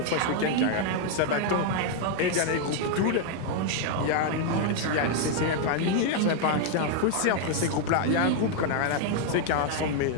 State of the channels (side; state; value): both; different; correlation 0.00